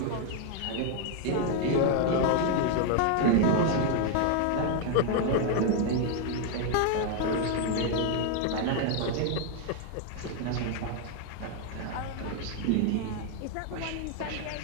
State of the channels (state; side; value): different; both; correlation 0.00